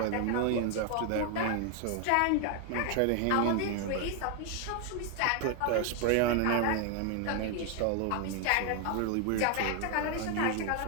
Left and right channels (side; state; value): both; different; correlation 0.01